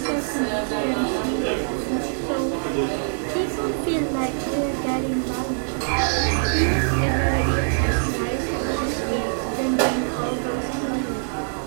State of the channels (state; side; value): silent; left; digital silence